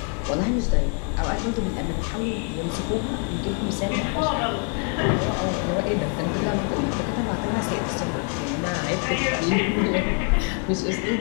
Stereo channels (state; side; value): quieter; right; 39.2 dB